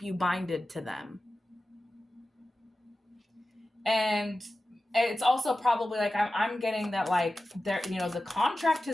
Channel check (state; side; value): normal; both; correlation 0.94